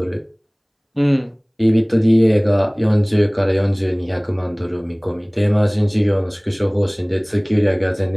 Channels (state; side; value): identical; both; correlation 1.00